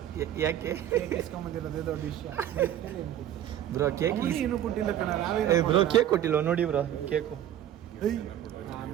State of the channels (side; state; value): left; quieter; 11.4 dB